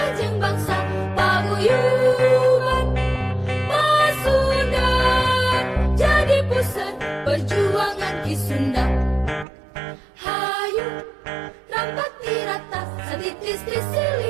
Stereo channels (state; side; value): drops out; left; at 9.5 s